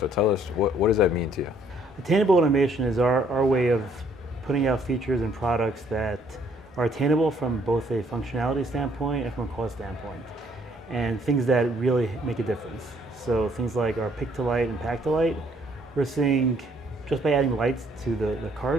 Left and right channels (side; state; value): both; normal; correlation 0.64